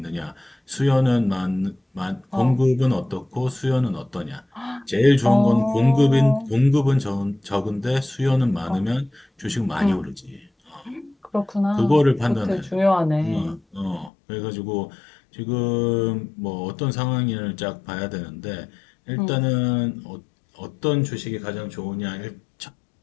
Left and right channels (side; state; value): right; drops out; at 14.1 s